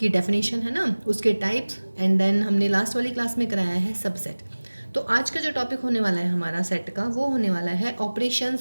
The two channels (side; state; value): both; inverted; correlation -1.00